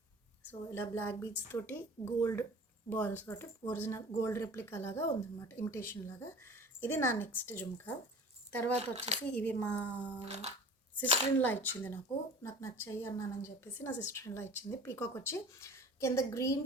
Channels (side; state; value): both; normal; correlation 0.40